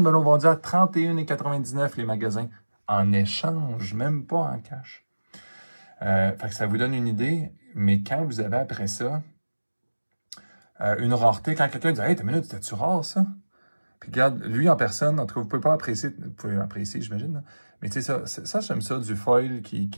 me l'a vendu à 31,99$ les magasins. En échange, même pas en cash. Fait que ça vous donne une idée, mais quand vous avez après ça une rareté, quand quelqu'un dit « Hey, t'as une minute, c'était-tu rare ça? » Puis regarde, lui en personne, en tout cas, vous pouvez pas apprécier, vous pouvez apprécier, j'imagine, mais tu sais, ça j'aime ça, du foil qui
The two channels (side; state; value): both; inverted; correlation -1.00